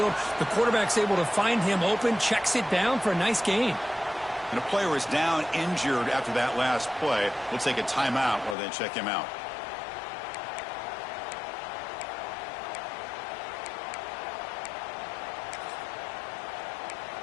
The quarterback's able to find him open, checks it down for a nice gain. And a player is down injured after that last play. We'll take a timeout while they check him out.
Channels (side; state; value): right; drops out; at 8.6 s